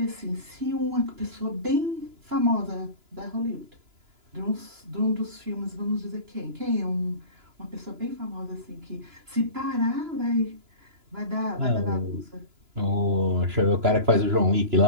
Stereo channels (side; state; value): left; late; 2.9 ms